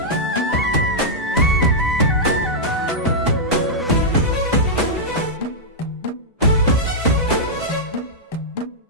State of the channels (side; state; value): both; normal; correlation -0.08